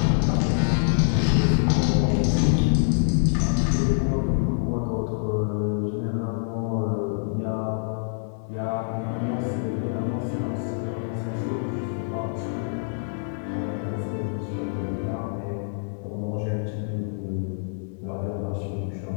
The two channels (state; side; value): silent; right; digital silence